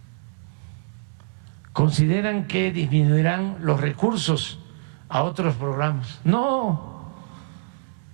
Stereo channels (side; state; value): left; silent; digital silence